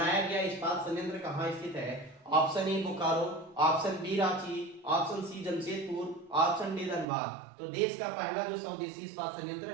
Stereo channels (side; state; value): left; drops out; at 7.1 s